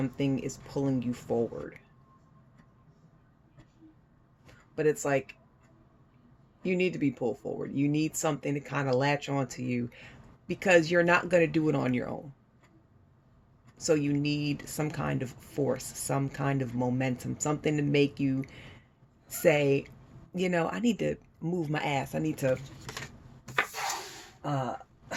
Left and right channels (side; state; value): both; identical; correlation 1.00